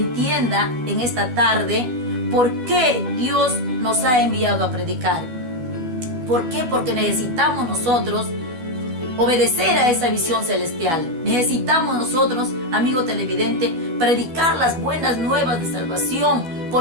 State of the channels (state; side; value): late; left; 12 ms